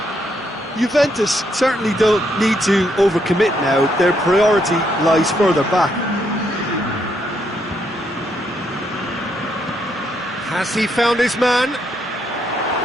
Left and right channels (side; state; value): both; normal; correlation 0.75